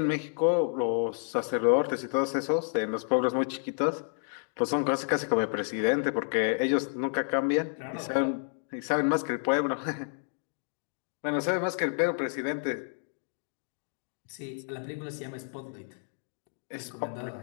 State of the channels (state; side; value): silent; right; digital silence